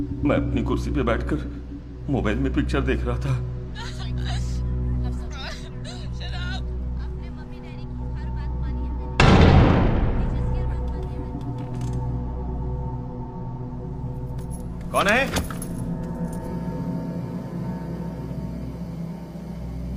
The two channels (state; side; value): identical; both; correlation 1.00